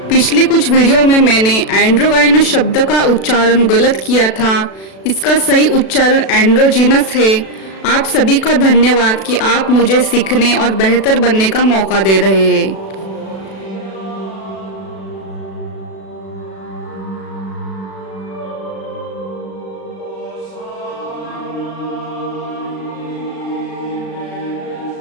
पिछले कुछ वीडियो में मैंने एंड्रोगाइनस शब्द का उच्चारण गलत किया था। इसका सही उच्चारण एंड्रोजीनस है। आप सभी का धन्यवाद कि आप मुझे सीखने और बेहतर बनने का मौका दे रहे हैं।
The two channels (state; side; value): late; right; 36 ms